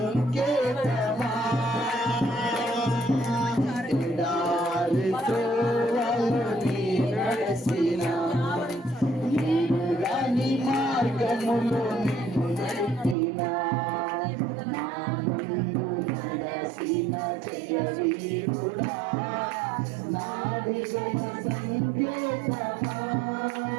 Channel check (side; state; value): left; drops out; at 13.2 s